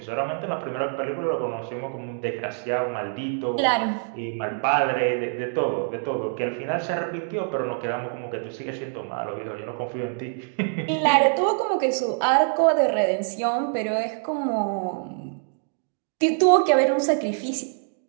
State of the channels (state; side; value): silent; left; 62 dB below the other